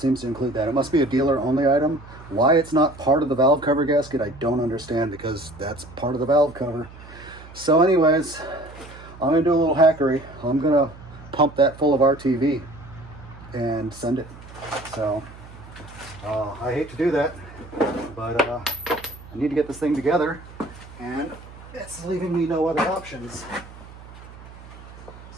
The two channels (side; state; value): right; noise; hum, 18 dB below the sound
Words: to include that. It must be a dealer only item. Why it's not part of the valve cover gasket, I don't understand, because that's part of the valve cover. So anyways, I'm gonna do a little hackery. I'm gonna pump that full of RTV and send it. So I hate to do that, but I need to get this thing together, and it's leaving me no other options.